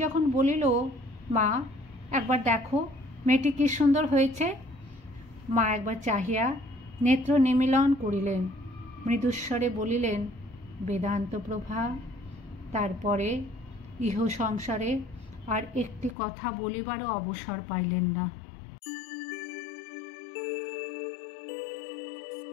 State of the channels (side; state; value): right; drops out; at 16.2 s